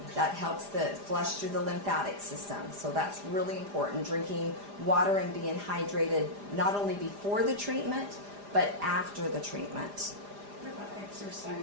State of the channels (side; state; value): left; late; 4.9 ms